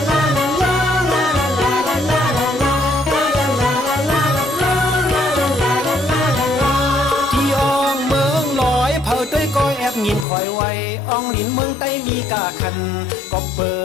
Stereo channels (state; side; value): drops out; right; at 10.2 s